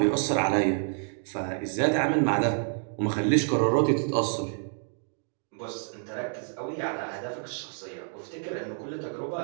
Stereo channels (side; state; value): left; silent; 59 dB below the other